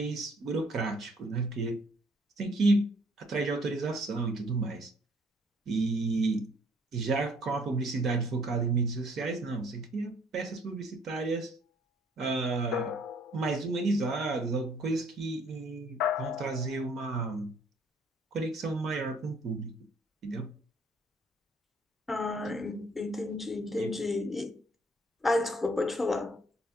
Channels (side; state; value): both; normal; correlation 0.61